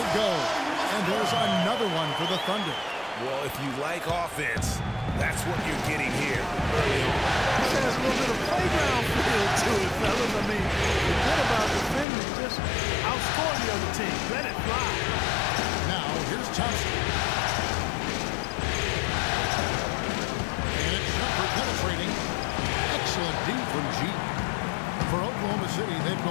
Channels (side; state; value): right; drops out; at 12.1 s